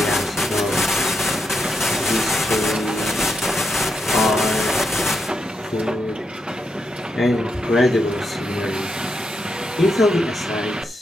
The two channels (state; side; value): normal; both; correlation 0.83